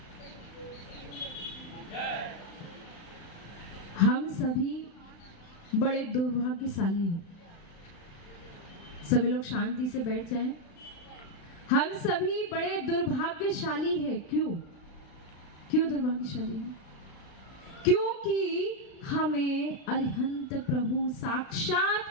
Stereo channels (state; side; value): late; right; 35 ms